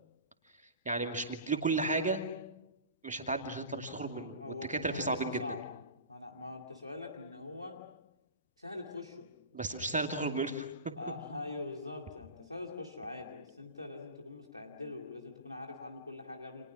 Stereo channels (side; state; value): both; inverted; correlation -0.32